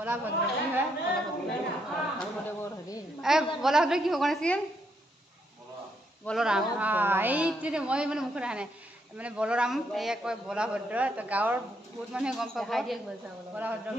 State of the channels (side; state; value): both; normal; correlation 0.76